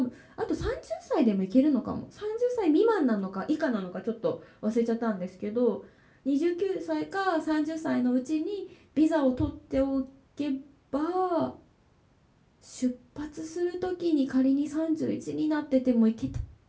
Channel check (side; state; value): both; identical; correlation 1.00